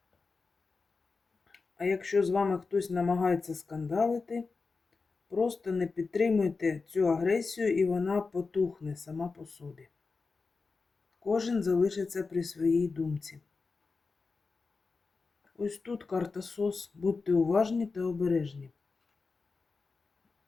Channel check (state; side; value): quieter; right; 4.3 dB